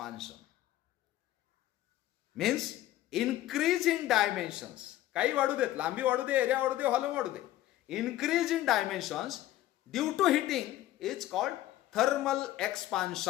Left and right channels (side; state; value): right; quieter; 14.5 dB